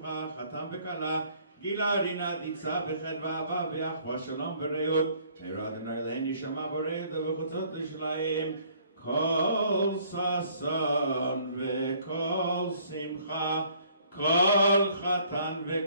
חתן וכלה. גילה רינה דיצה בחדווה אהבה ואחווה שלום ורעות. מהרה אדוני אלוהינו שמע בורא ובחוצות ירושלים. כל ששון וכל שמחה, כל חתן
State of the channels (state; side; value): inverted; both; correlation -0.60